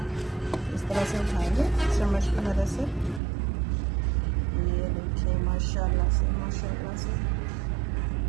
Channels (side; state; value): left; drops out; at 3.2 s